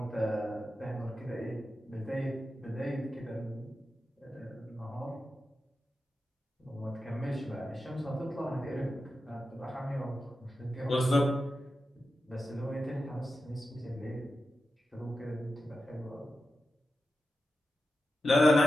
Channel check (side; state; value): both; normal; correlation 0.91